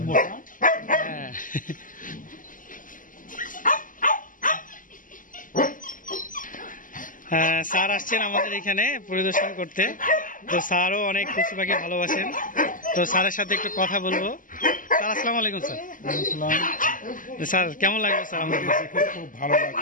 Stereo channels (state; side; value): late; right; 0.39 ms